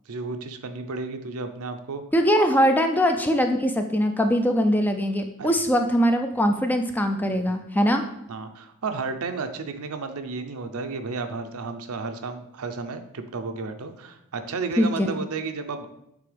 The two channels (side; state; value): both; normal; correlation 0.66